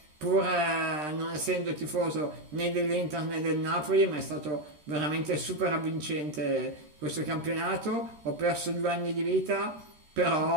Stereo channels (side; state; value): left; late; 13 ms